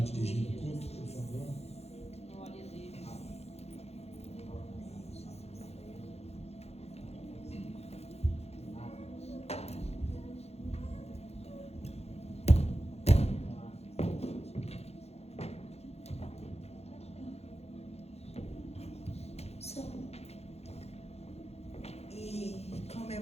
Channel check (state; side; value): late; right; 0.30 ms